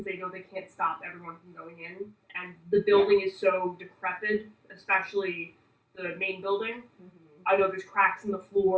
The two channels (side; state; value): both; identical; correlation 1.00